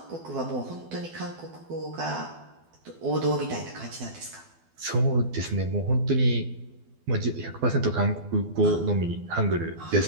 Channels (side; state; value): left; late; 12 ms